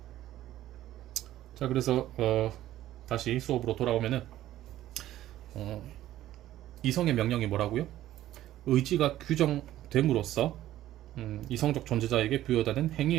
자, 그래서 다시 수업으로 돌아오면은 이성의 명령이 뭐라고요? 의지가 규정됨으로써 이성적 존재자에게 부여되는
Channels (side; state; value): left; quieter; 13.7 dB